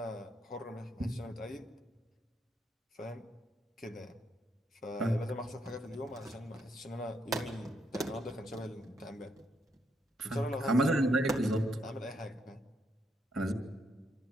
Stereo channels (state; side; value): normal; both; correlation 0.76